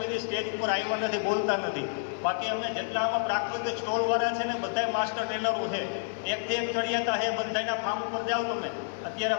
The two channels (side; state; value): right; silent; digital silence